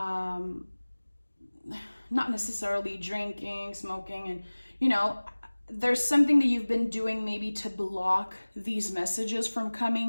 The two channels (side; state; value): both; inverted; correlation -1.00